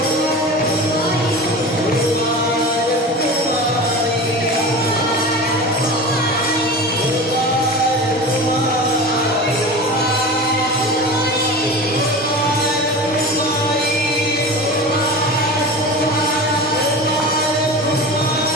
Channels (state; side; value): normal; both; correlation 0.31